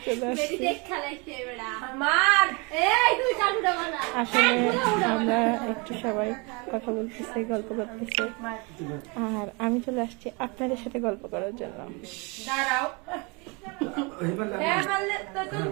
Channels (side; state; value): left; quieter; 29.8 dB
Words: চলে বেরি আসছি। দেখ খেলাইছে বেড়া। মার এই তুই চালুটা মারা। আসলে আমরা একটু সবাই কথা বলতেছি, গল্প করতেছি, আর আমি চলে আসছি আপনাদের সাথে গল্প করার জন্য। দাঁড়াও। এই বললা হ্যাঁ বললে তো